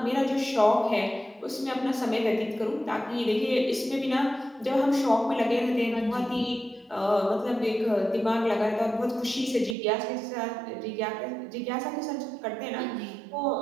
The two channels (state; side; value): drops out; left; at 9.8 s